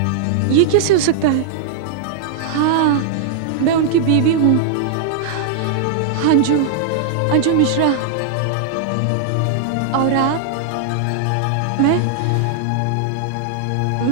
ये कैसे हो सकता है? हाँ, मैं उनकी बीवी हूँ, अंजू मिश्रा। और आप?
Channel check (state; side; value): late; left; 22 ms